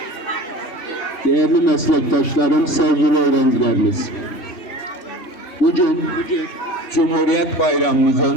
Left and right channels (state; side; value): late; right; 3.1 ms